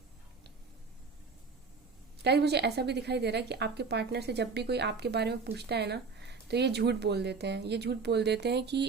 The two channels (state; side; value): quieter; left; 4.8 dB